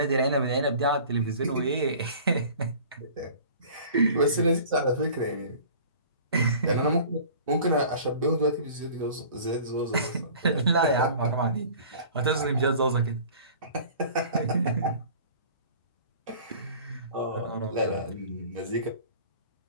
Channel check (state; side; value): inverted; both; correlation -0.45